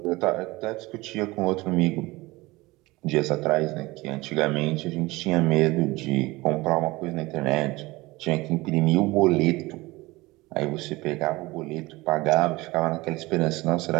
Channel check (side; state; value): left; quieter; 21.3 dB